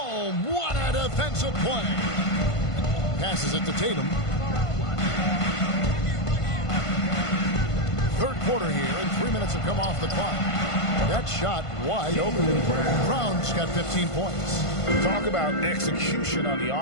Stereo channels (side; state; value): right; late; 1.5 ms